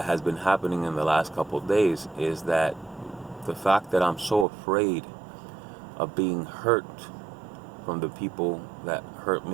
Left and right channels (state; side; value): drops out; left; at 4.5 s